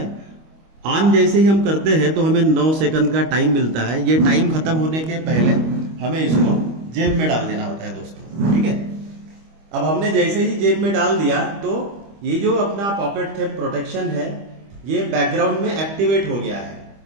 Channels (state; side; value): late; left; 25 ms